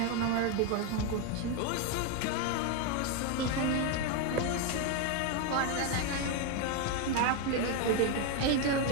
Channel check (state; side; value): different; both; correlation 0.02